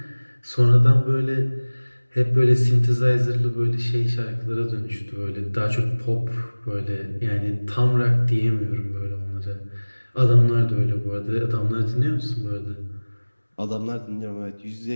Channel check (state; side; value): inverted; both; correlation -1.00